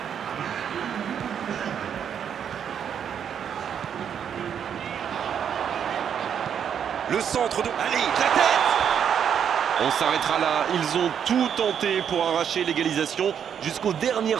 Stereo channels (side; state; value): left; quieter; 8.3 dB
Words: Le centre de... Allez, la tête! On s'arrêtera là. Ils ont tout tenté pour arracher l'égalisation jusqu'aux dernières